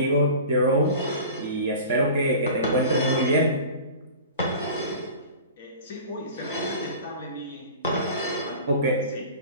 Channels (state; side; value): inverted; both; correlation -0.39